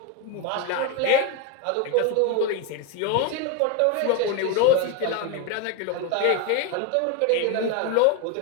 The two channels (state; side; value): different; both; correlation 0.02